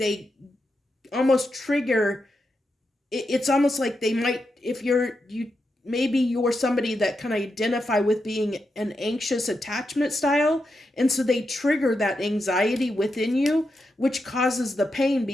almost trigger. It's almost like they might, if maybe you're somebody that can identify with being an anxious attachment style, and so they trigger that anxiety within you, which causes the pain,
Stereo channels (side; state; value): both; normal; correlation 0.86